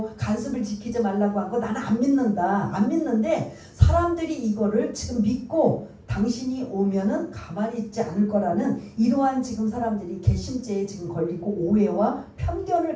간습을 지키지 말라고 한 거 나는 안 믿는다. 안 믿는데 사람들이 이거를 지금 믿고 당신이 오면은 가만히 있지 않을 거라는 이러한 지금 사람들이 개심죄에 지금 걸리고 오해와 편견을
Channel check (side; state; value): both; identical; correlation 1.00